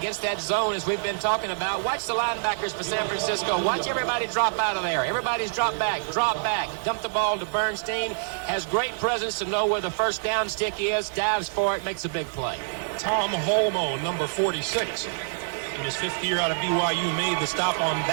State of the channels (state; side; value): silent; left; digital silence